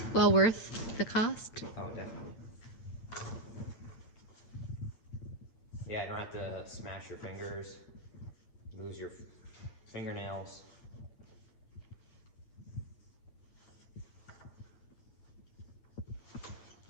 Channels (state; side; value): late; right; 8.9 ms